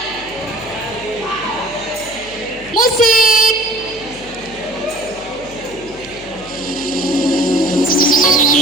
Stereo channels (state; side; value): noise; left; hum, 20 dB below the sound